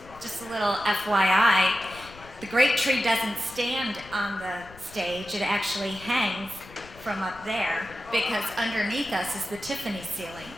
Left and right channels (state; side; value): noise; left; rumble, 20 dB below the sound